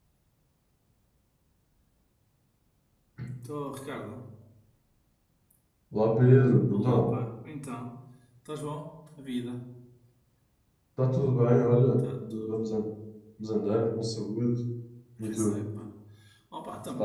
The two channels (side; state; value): both; identical; correlation 1.00